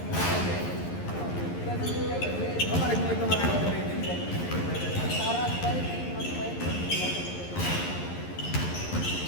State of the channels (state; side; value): late; right; 11 ms